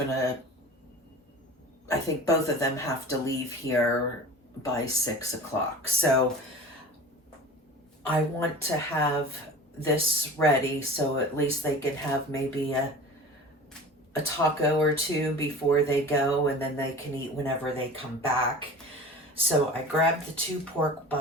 I think both of them have to leave here by 6 o'clock. So I want to have this ready so at least they can have maybe a taco or 2 before they go, and then they can eat whenever they come back. So I grabbed the 2 pork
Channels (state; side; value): normal; both; correlation 0.37